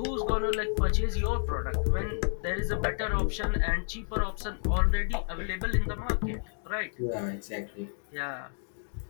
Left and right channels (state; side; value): silent; right; digital silence